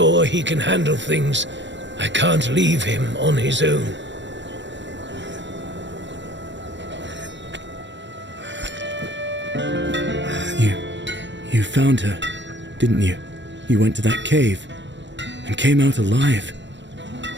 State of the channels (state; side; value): late; left; 0.53 ms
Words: he can handle things, I can't leave him on his own. You found her, didn't you? You went to that cave, and came out alive.